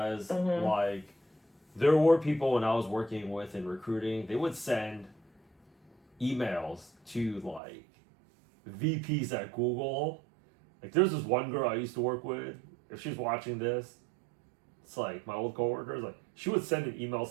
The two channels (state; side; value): drops out; left; at 7.6 s